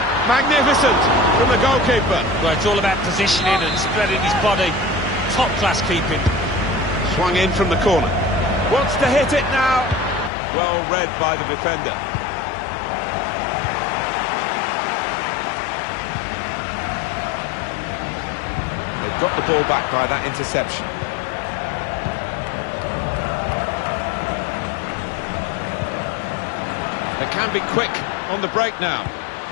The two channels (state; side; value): drops out; right; at 10.3 s